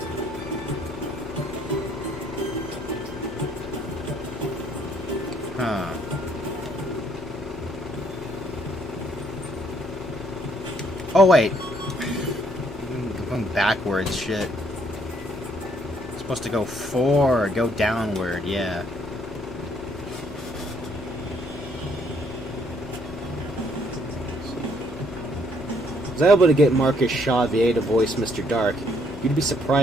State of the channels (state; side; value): normal; both; correlation 0.67